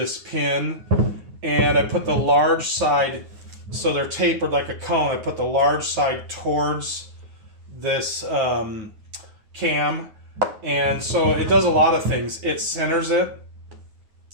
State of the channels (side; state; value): left; late; 9.5 ms